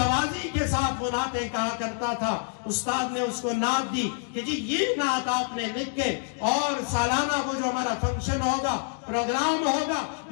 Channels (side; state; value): right; silent; 59 dB below the other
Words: کے ساتھ وہ نعتیں کہا کرتا تھا استاد نے اس کو نعت دی کہ جی یہ نعت آپ نے لکھ کے اور سالانہ وہ جو ہمارا فنکشن ہوگا پروگرام ہوگا